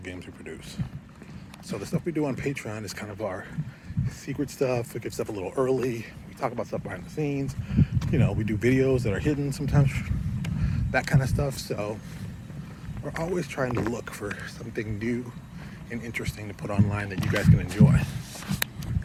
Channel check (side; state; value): both; identical; correlation 1.00